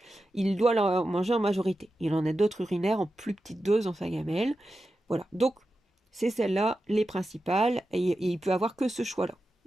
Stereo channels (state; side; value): normal; both; correlation 0.91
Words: Il doit la manger en majorité. Il en a d'autres urinaires en plus petite dose dans sa gamelle. Voilà. Donc, c'est celle-là, les principales, et il peut avoir que ce choix-là.